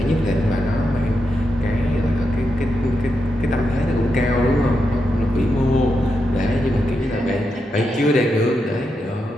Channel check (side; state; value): both; normal; correlation 0.85